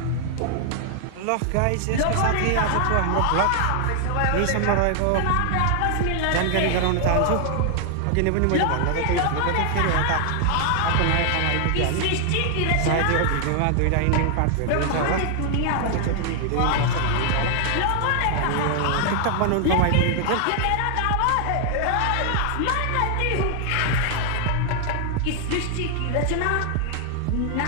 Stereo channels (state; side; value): different; both; correlation 0.00